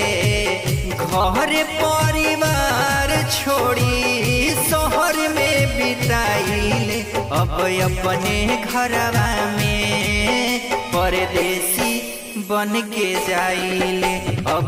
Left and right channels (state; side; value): identical; both; correlation 1.00